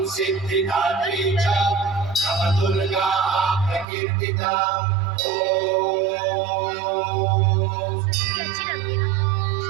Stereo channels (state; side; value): drops out; left; at 3.9 s